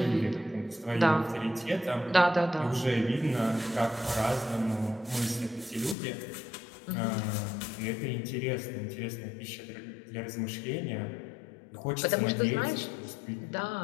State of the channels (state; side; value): drops out; right; at 6.0 s